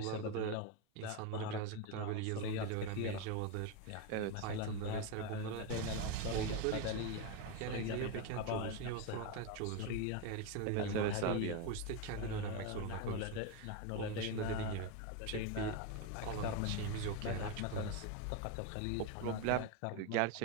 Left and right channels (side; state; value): both; different; correlation 0.03